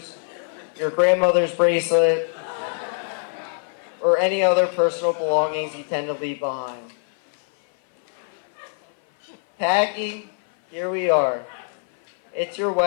your grandmother's bracelet, or any other personal belongings you tend to leave behind. Packy, here we are. It's your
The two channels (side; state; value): right; silent; 57 dB below the other